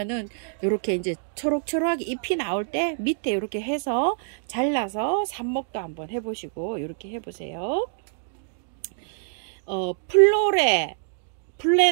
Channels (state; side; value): silent; left; digital silence